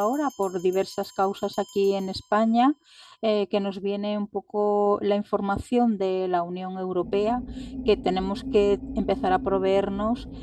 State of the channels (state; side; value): identical; both; correlation 1.00